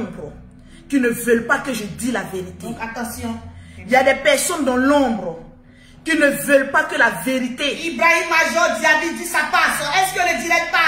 qui ne veulent pas que je dise la vérité. Donc attention. Il y a des personnes dans l'ombre qui ne veulent pas que la vérité. Ibrahim Major Diaby dit ça passe. Est-ce que le direct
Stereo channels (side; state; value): both; identical; correlation 1.00